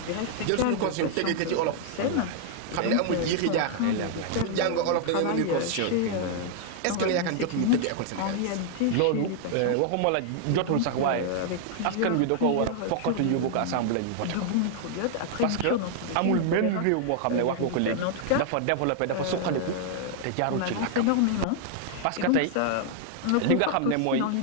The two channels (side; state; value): both; different; correlation -0.01